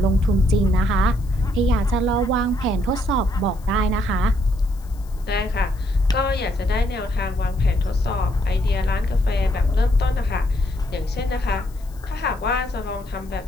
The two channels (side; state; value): left; noise; hiss, 27 dB below the sound